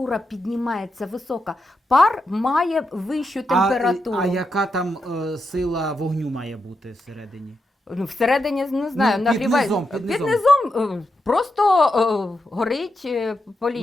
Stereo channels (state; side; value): normal; both; correlation 0.85